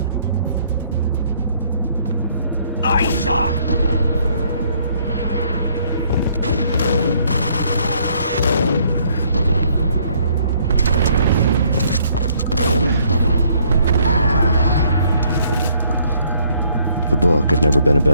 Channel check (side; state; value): both; inverted; correlation -0.65